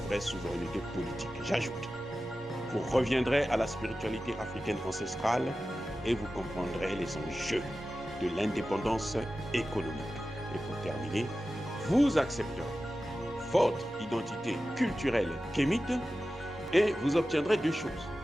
souveraineté politique. J'ajoute, vous reviendrez à la spiritualité africaine ancestrale et vous comprendrez les enjeux de l'indépendance économique. Et pour terminer, vous accepterez votre identité culturelle kémite et vous obtiendrez deux choses.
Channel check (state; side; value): normal; both; correlation 0.94